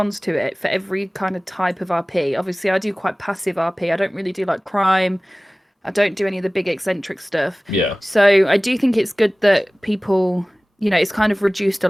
to it for every kind of type of RP. Obviously, I do quite passive RP. I don't really do like crime. I don't do any of the big eccentric stuff. Yeah. So I do think it's good that people, it's kind of reduced a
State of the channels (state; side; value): normal; both; correlation 0.98